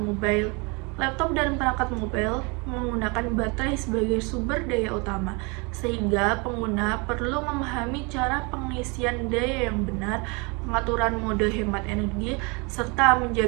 Laptop dan perangkat mobile menggunakan baterai sebagai sumber daya utama, sehingga pengguna perlu memahami cara pengisian daya yang benar, pengaturan mode hemat energi, serta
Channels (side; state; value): left; quieter; 30.2 dB